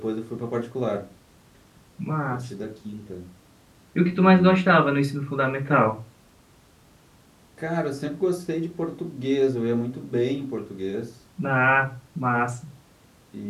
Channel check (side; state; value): both; identical; correlation 1.00